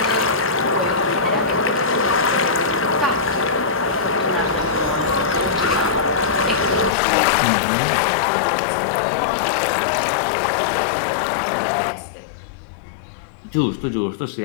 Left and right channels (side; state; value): right; drops out; at 6.9 s